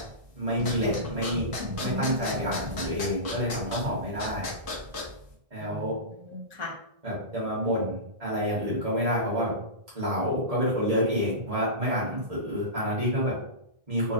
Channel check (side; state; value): left; late; 1.6 ms